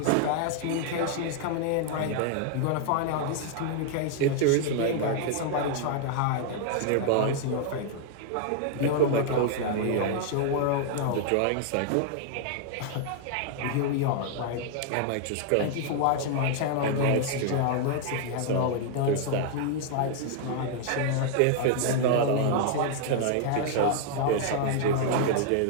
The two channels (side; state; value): both; different; correlation 0.00